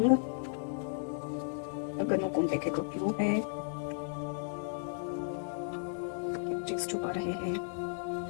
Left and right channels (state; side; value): silent; right; digital silence